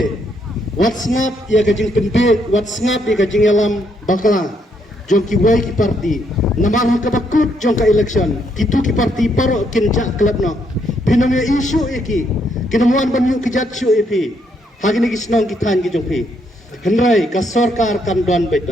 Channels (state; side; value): normal; both; correlation 0.74